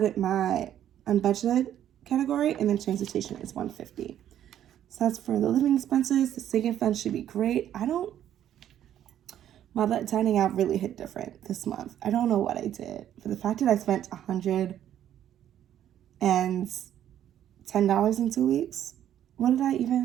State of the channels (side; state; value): left; quieter; 10.9 dB